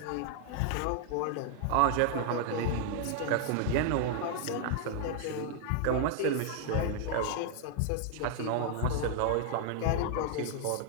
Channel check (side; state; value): both; different; correlation 0.00